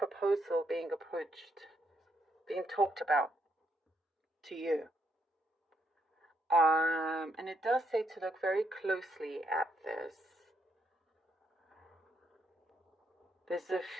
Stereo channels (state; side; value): normal; both; correlation 0.76